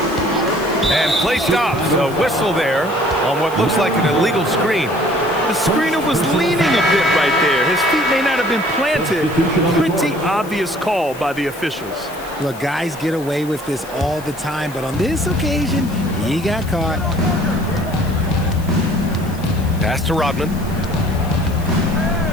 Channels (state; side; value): noise; left; hiss, 19 dB below the sound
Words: And play stops. A whistle there on what looks like an illegal screen. The screener was leaning a bit right there. His feet may not have been planted. Pretty obvious call by the officials. Look, guys get away with this all the time, but on this occasion, he got caught. Pass to Rodman.